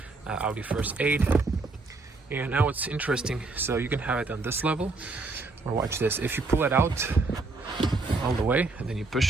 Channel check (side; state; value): left; quieter; 3.6 dB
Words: Audi first aid. And now it's interesting, so you can have it on this level, or watch this, if you pull it out all the way and then you